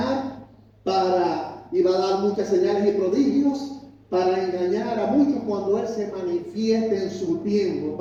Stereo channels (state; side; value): identical; both; correlation 1.00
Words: y va a dar muchas señales y prodigios para engañar a muchos cuando Él se manifieste en su tiempo,